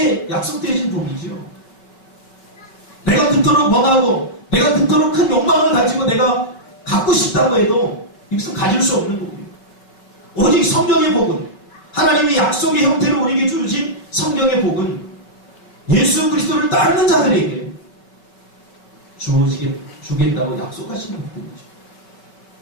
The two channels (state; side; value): late; right; 5.2 ms